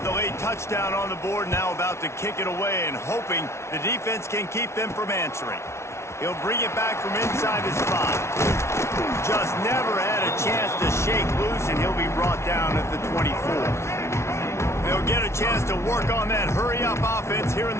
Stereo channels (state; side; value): late; right; 0.13 ms